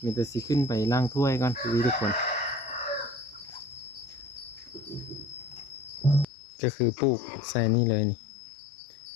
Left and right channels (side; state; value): right; drops out; at 6.2 s